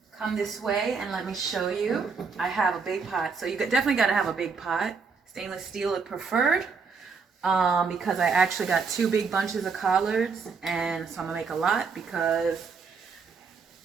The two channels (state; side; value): quieter; left; 5.1 dB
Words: come this way and let me show you. I have a big pot, so you definitely got to have a big pot. Stainless steel is preferred because I actually got 2 big bunches of collards, and so I'm gonna make a lot because